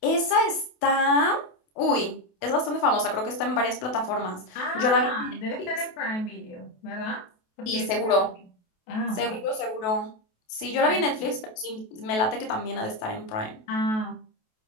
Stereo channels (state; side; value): late; right; 28 ms